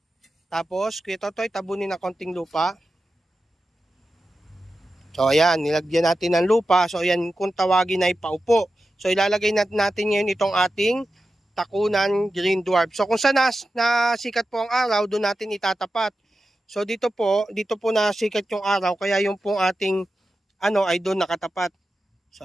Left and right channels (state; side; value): normal; both; correlation 0.92